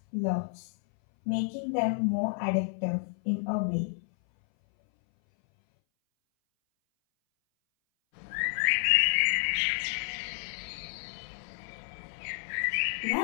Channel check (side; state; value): right; silent; 58 dB below the other